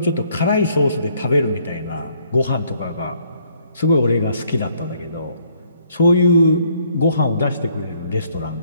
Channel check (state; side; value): inverted; both; correlation -0.66